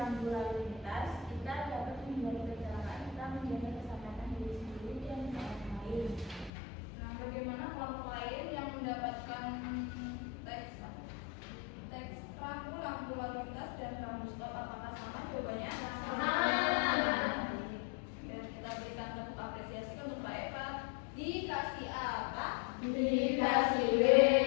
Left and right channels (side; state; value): right; drops out; at 6.5 s